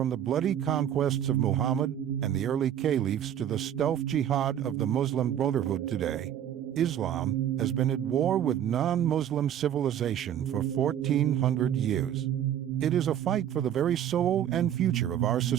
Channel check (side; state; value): left; quieter; 10.3 dB